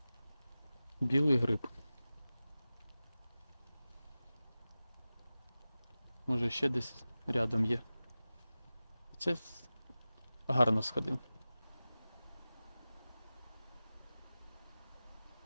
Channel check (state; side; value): inverted; both; correlation -0.96